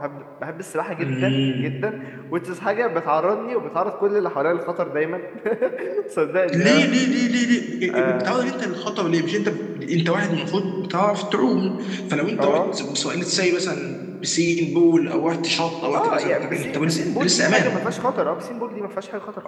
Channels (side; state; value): both; identical; correlation 1.00